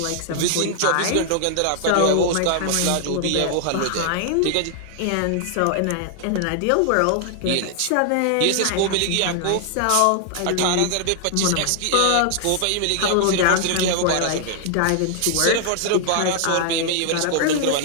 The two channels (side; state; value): both; different; correlation 0.00